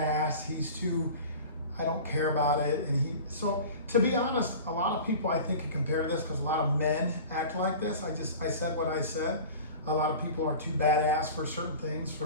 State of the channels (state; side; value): inverted; both; correlation -0.38